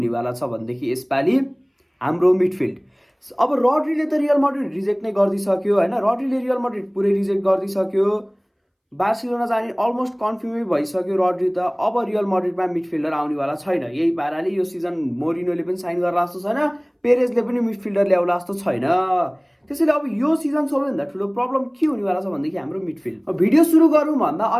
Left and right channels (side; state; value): both; identical; correlation 1.00